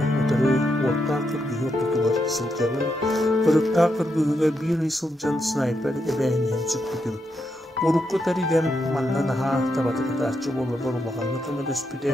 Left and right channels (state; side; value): normal; both; correlation 0.82